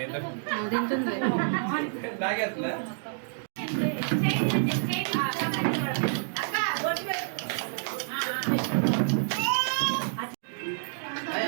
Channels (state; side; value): silent; left; digital silence